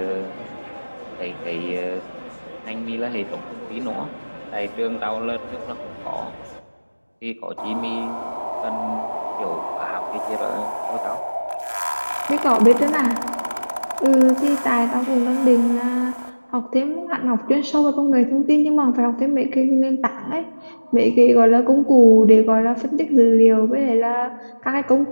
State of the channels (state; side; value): inverted; both; correlation -1.00